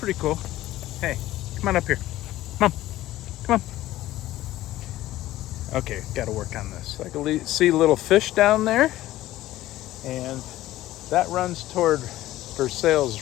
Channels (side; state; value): right; quieter; 15.3 dB